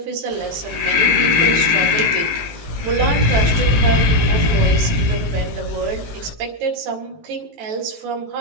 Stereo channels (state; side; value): late; left; 18 ms